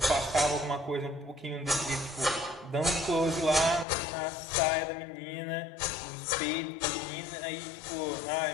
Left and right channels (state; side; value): drops out; right; at 3.9 s